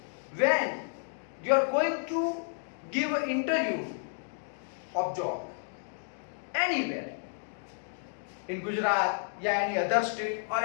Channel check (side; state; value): right; silent; digital silence